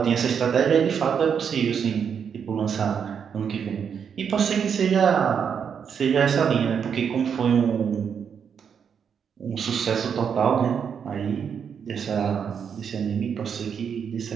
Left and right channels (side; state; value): left; quieter; 7.2 dB